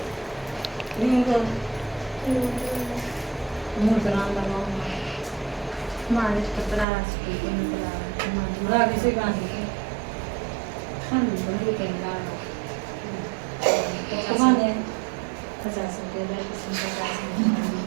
लिंगो मुद्रान लगाओ मालिश पत्रास की मुद्रा रागी से गाने खाने बंद कर ला तो माने 50 के लिए 50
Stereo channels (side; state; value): left; drops out; at 6.9 s